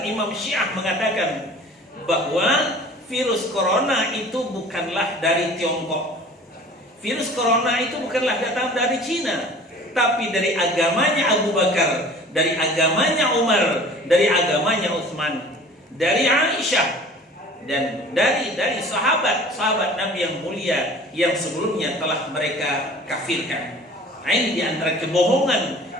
Imam Syiah mengatakan bahwa virus corona itu bukanlah dari Tiongkok. Virus corona itu bukanlah datang dari Cina, tapi dari agamanya Abu Bakar, dari agamanya Umar, dari agamanya Utsman, dari Aisyah, dan dari sahabat Nabi yang mulia yang sebelumnya telah mereka kafirkan. Nah, ini di antara kebohongan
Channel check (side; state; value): both; normal; correlation 0.46